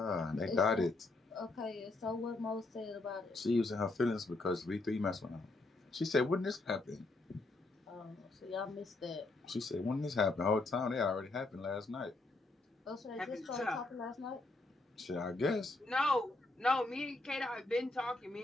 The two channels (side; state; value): right; quieter; 3.1 dB